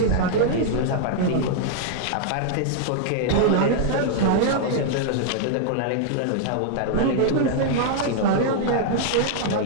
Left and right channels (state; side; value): different; both; correlation -0.01